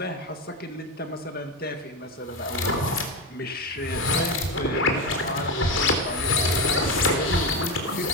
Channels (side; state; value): both; normal; correlation 0.16